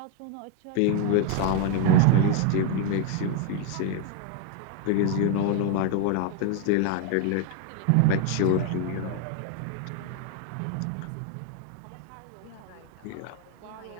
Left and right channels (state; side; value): different; both; correlation 0.01